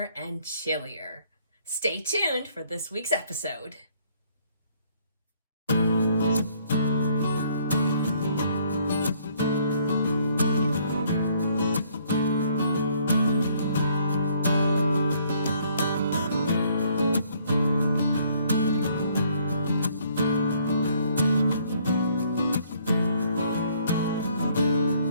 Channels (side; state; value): both; inverted; correlation -0.64